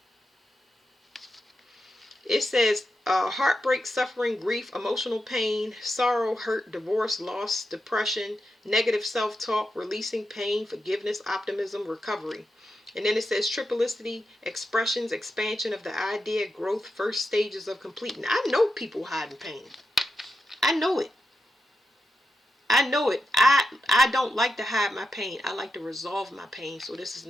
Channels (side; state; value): both; normal; correlation 0.87